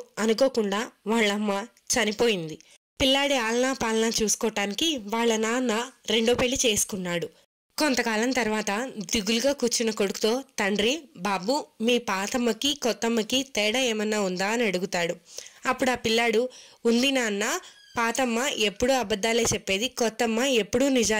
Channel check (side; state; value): both; identical; correlation 1.00